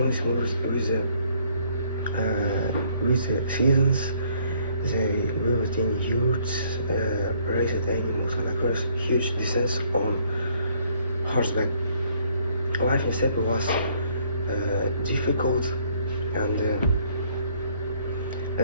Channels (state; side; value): inverted; both; correlation -0.65